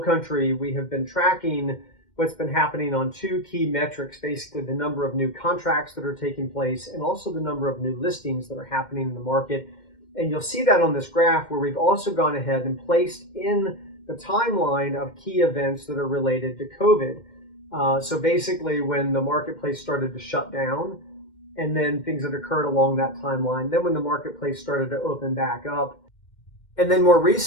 country, we have been tracking what's been happening on two key metrics, basically the number of new contracts that are taking place and also the number of new listings that are happening in the market. And you'll see that on this graph where we've also gone ahead and placed in the timeline of key events that are related to COVID. So basically, when the marketplace started to shut down, and then things that occurred along that timeline, then when the marketplace started to open back up, and then more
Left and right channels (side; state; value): right; late; 2.1 ms